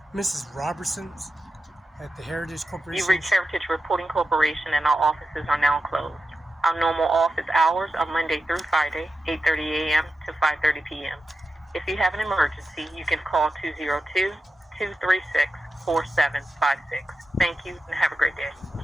Mrs. Robertson's at the Heritage Corporation. You reached Heritage Reporting Corporation, and our offices are now closed. Our normal office hours are Monday through Friday, 8:30 a.m. to 5:30 p.m. If you have an emergency, you can call 202-236-4756. Thank you, and have a great day.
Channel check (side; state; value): both; normal; correlation 0.91